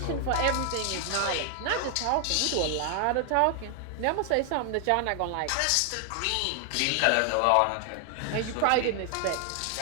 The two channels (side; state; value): both; different; correlation 0.00